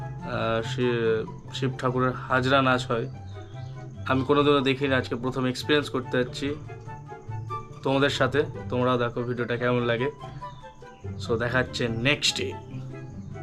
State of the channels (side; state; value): both; identical; correlation 1.00